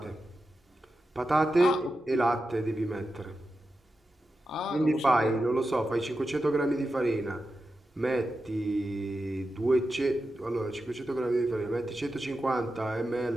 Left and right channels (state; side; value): normal; both; correlation 0.90